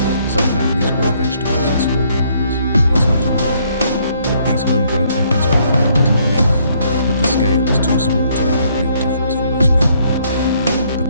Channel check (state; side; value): inverted; both; correlation -0.68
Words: Some families grow vegetables in small gardens, but it's not enough. These homegrown efforts provide a little relief, but the scale is too small to make a real difference for most people. The